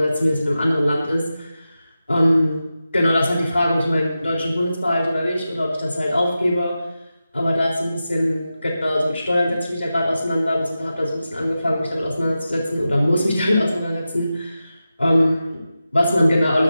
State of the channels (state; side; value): inverted; both; correlation -0.92